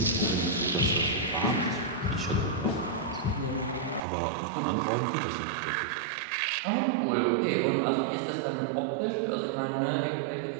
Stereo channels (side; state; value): left; drops out; at 4.0 s